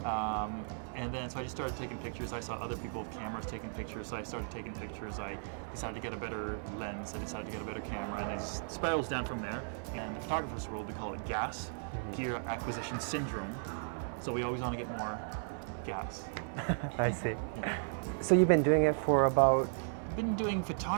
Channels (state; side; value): silent; left; digital silence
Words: And then so I just started taking pictures. I saw other people with cameras taking pictures, so I started taking pictures. I decided to get a better lens, I decided to get a better camera, and it just spirals down from there. And the photographer's world, we call it GAS, Gear Acquisition Syndrome. So we always want to get more gas. I see. Yeah. So you've been doing it for about? Been doing